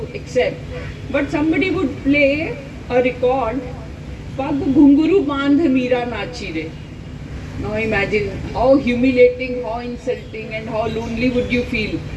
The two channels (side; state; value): both; identical; correlation 1.00